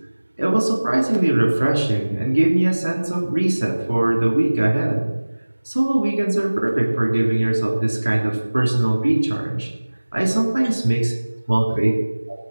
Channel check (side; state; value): both; inverted; correlation -1.00